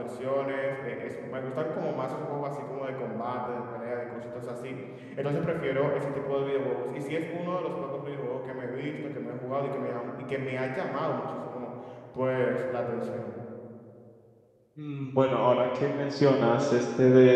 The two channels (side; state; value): both; identical; correlation 1.00